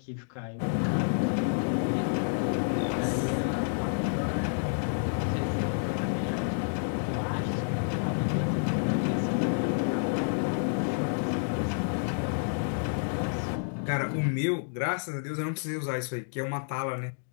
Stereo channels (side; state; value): right; silent; digital silence